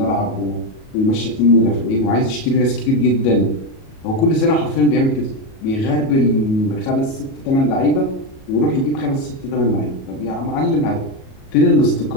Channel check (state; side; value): late; right; 37 ms